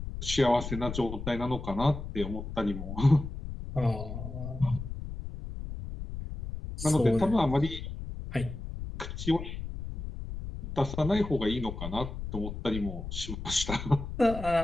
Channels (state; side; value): noise; left; rumble, 8 dB below the sound